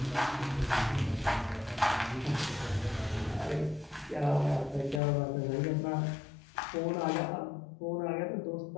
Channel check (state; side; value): drops out; right; at 5.0 s